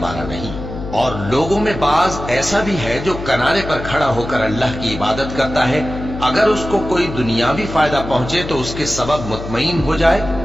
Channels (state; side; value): noise; left; hum, 9 dB below the sound